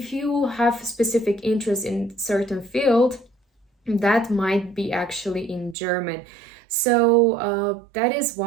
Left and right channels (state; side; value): drops out; left; at 5.8 s